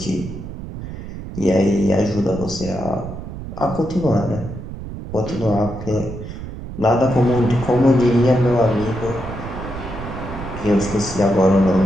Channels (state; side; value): noise; right; rumble, 10 dB below the sound